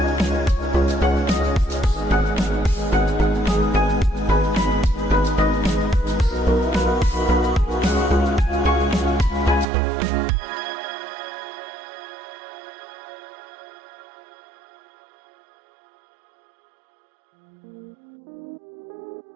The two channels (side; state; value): left; drops out; at 9.7 s